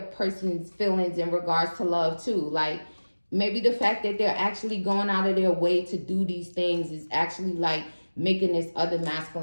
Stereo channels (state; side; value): inverted; both; correlation -1.00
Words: feelings in regards to love too, like maybe the fact that they're actually going out of their way to do these things is actually like making this other